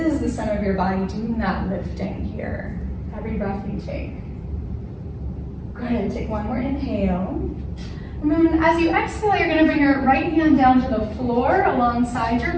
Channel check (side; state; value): both; identical; correlation 1.00